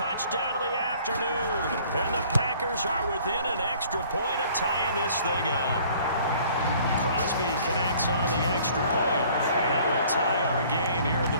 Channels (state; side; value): inverted; both; correlation -0.55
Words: of the afternoon. And the Packers are within an extra point of tying this thing up. Crosby connects on the extra point. And that will tie our game here in